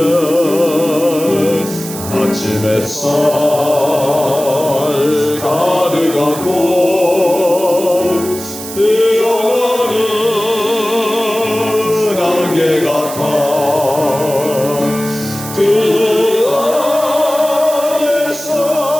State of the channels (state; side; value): noise; right; hiss, 11 dB below the sound